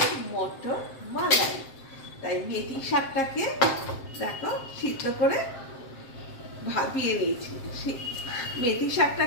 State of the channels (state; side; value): late; right; 7.6 ms